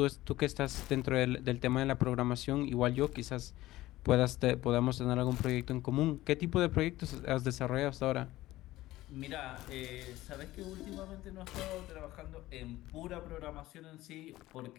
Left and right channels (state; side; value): quieter; right; 16.6 dB